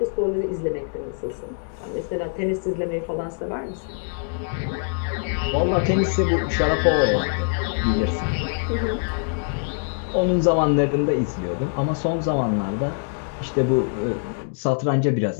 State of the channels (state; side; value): silent; right; digital silence